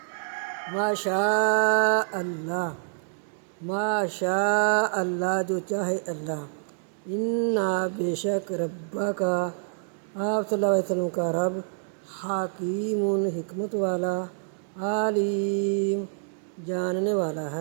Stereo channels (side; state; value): left; silent; digital silence